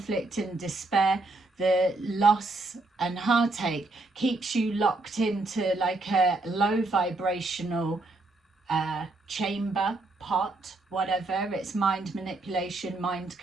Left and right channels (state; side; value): quieter; left; 3.1 dB